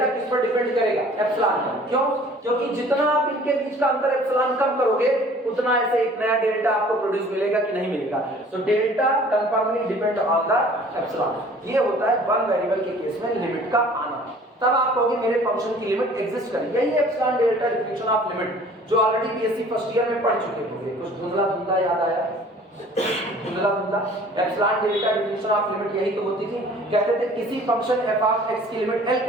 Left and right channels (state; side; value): normal; both; correlation 0.50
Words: किस पर डिपेंड करेगा? एप्सिलॉन पर। क्यों? क्योंकि जितना आप इनके बीच का अंतर एप्सिलॉन कम करोगे उतना ऐसे एक नया डेल्टा आपको प्रोड्यूस मिलेगा कि नहीं मिलेगा? तो delta कंफर्मली depend on the epsilon. ये होता है वन वेरिएबल के केस में लिमिट का आना। तब आप कहोगे मेरे फंक्शन की लिमिट एग्जिस्ट करेगी। यही epsilon delta definition of limit जो ऑलरेडी बीएससी फर्स्ट ईयर में पढ़ चुके होंगे। कुछ धुंधला याद आया? Epsilon delta definition of limit यही तो होती थी। कहते थे किसी फंक्शन f ऑफ x की लिमिट L